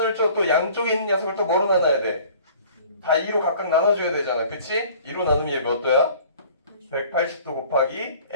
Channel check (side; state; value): both; inverted; correlation -0.50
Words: 또 양쪽에 있는 녀석을 또 뭐로 나눠야 돼? 다 2로 각각 나눠줘야 되잖아. 그치? 2로 나누면 얘 몇 도야? 180도 곱하기